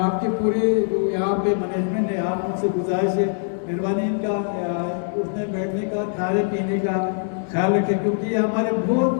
आपके पूरे जो यहाँ पे मैनेजमेंट है, आप उनसे गुजारिश है मेहरबानी इनका उठने बैठने का, खाने पीने का ख्याल रखें, क्योंकि ये हमारे बहुत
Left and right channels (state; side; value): silent; right; 64 dB below the other